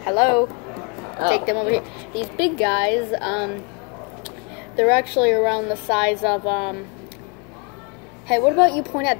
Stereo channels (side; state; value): right; quieter; 31.9 dB